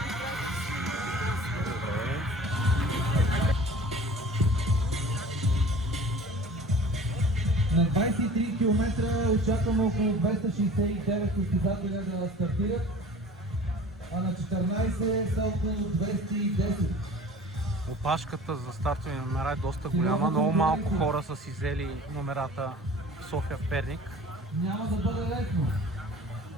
На 23 км очакваме около 269 състезателя да стартират, а на 14 са около 210. Опашката за стартови номера е доста голяма, много малко хора са си взели номерата в София, в Перник. Няма да бъде лесно.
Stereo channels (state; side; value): normal; both; correlation 0.43